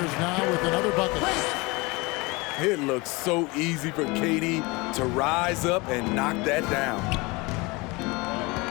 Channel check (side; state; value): right; quieter; 25.2 dB